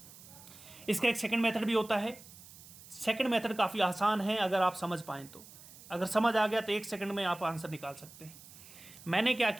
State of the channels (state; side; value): noise; right; hiss, 19 dB below the sound